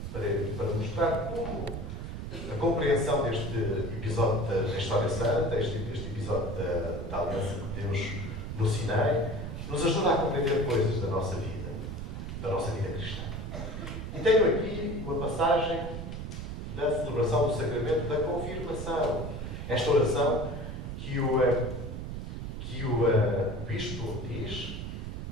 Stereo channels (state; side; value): noise; right; rumble, 6 dB below the sound